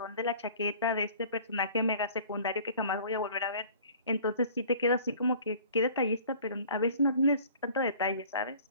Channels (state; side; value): inverted; both; correlation -0.49